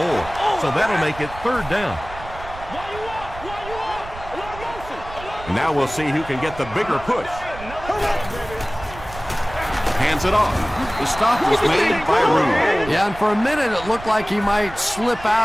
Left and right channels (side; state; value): right; noise; rumble, 14 dB below the sound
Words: So that'll make it 3rd down. Now we'll see who can get the bigger push. Hands it off. The stop was made by Rooney. Yeah, and for a minute it looked like he might slip